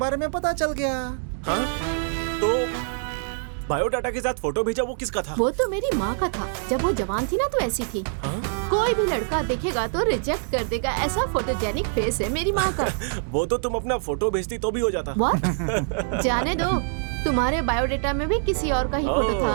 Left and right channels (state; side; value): silent; left; digital silence